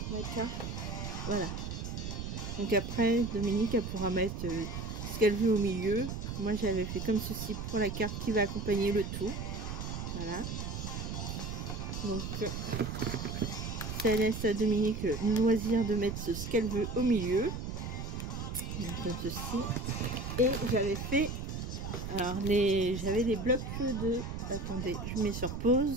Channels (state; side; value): noise; right; rumble, 5 dB below the sound